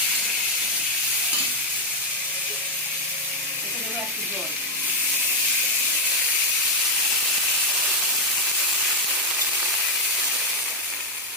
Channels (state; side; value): normal; both; correlation 0.02